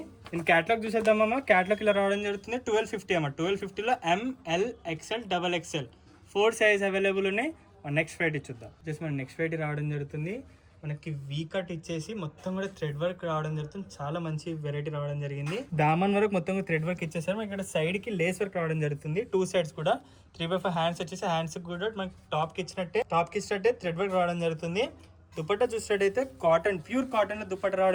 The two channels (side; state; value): both; identical; correlation 1.00